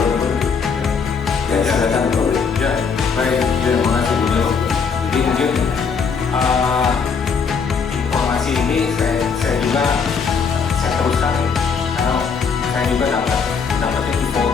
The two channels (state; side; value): quieter; right; 5.7 dB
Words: perlu. Ya, silakan Bro. Ya, baik, terima kasih Bu Nilo. Jadi mungkin informasi ini saya juga teruskan karena saya juga dapatnya di